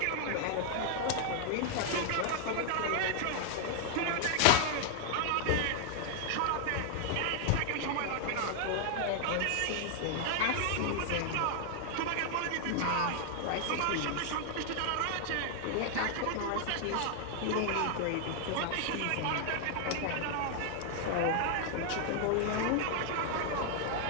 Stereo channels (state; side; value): different; both; correlation 0.00